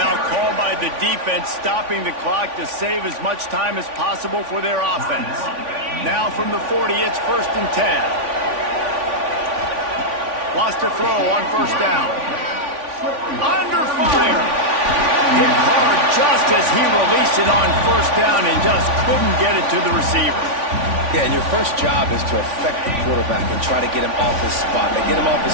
called by the defense, stopping the clock to save as much time as possible for their offense. Now from the 40, it's 1st and 10. Wants to throw on 1st down. Under fire. Hit hard just as he released it on 1st down and just couldn't get it to the receiver. Yeah, and your first job is to affect the quarterback and try to get him off his spot. They get him off his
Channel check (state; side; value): late; left; 3.5 ms